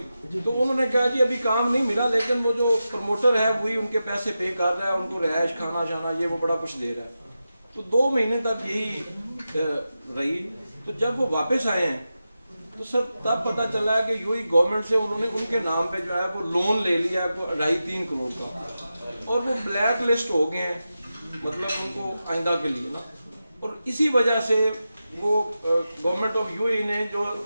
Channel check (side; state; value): both; inverted; correlation -0.91